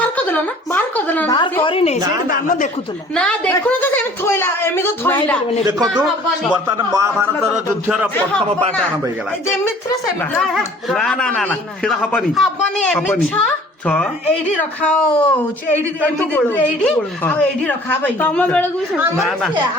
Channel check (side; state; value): both; normal; correlation 0.51